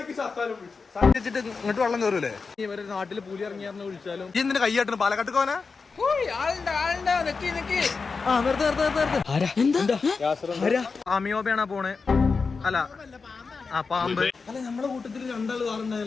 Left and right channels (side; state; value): right; quieter; 4.7 dB